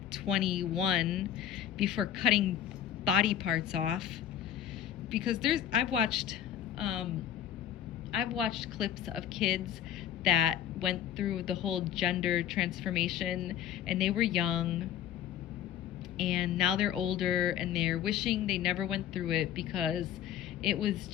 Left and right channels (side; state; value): right; quieter; 10.5 dB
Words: 21 before cutting body parts off. Because I've watched clips of kids that went through the whole gender transformation, and they were young, and now they're older, and they're wishing they never went through it because it was